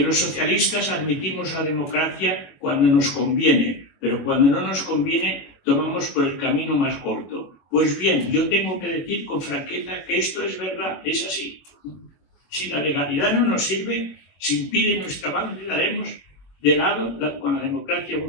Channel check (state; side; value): late; right; 21 ms